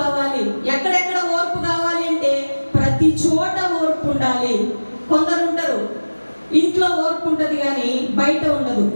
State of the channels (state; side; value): inverted; both; correlation -1.00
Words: ఎక్కడెక్కడ ఓర్పు కావాలి అంటే ప్రతి చోట ఓర్పు ఉండాలి. కొందరు ఉంటారు ఇంట్లో ఓర్పు ఉంటుంది కానీ బయట ఉండదు.